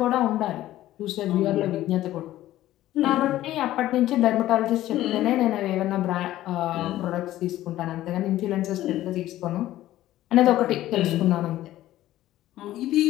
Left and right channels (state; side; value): quieter; right; 14.5 dB